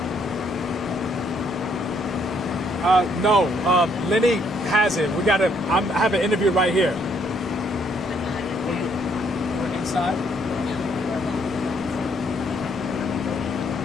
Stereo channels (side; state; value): both; normal; correlation 0.69